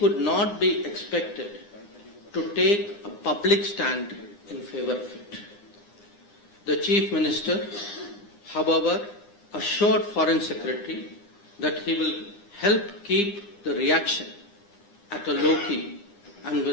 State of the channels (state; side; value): late; right; 9.8 ms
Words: not be expected to take a public stand in favor of it. The Chief Minister, however, assured Foreign Secretary that he will help keep the reaction at a low key and